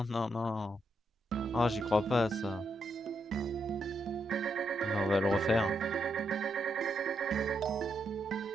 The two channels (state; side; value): normal; both; correlation 0.80